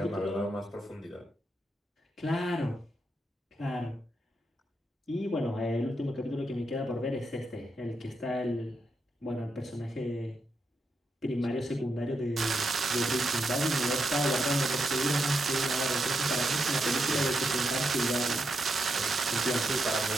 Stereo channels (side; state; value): both; normal; correlation 0.83